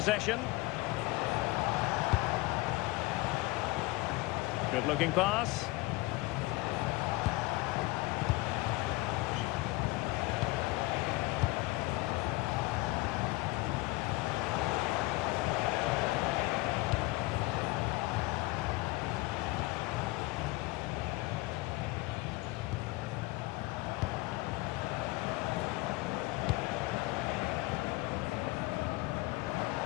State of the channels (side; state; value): right; quieter; 21.3 dB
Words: Good looking pass.